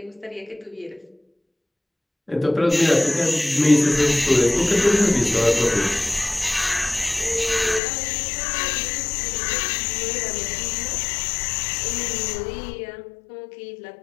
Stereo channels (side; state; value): right; drops out; at 7.8 s